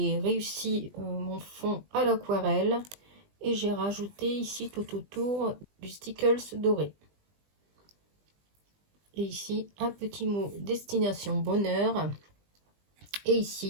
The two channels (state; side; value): late; left; 20 ms